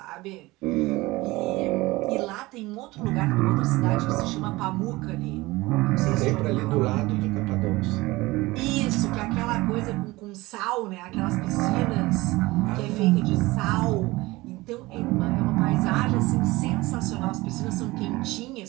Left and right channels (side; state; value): left; quieter; 20.6 dB